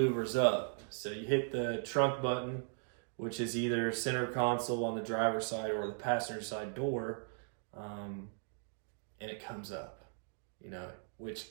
up. So you hit the trunk button, which is either center console on the driver's side or the passenger side door, and it comes up, which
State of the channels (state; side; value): silent; left; digital silence